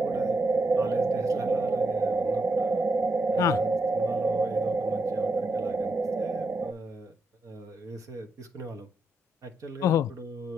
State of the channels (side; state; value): both; normal; correlation 0.81